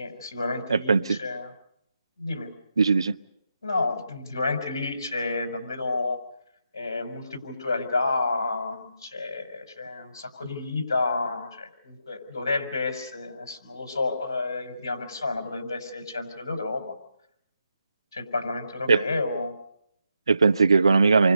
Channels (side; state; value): both; inverted; correlation -0.84